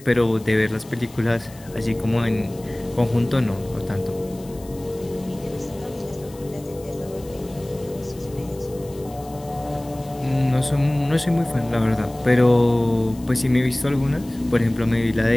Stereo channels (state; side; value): noise; left; hiss, 22 dB below the sound